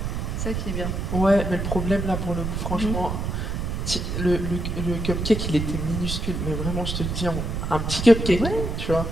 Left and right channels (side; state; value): right; noise; rumble, 2 dB below the sound